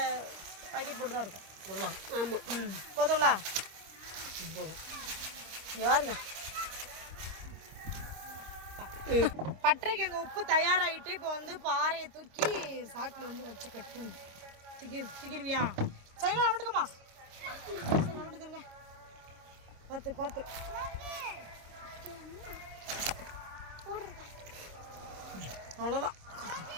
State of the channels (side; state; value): left; late; 26 ms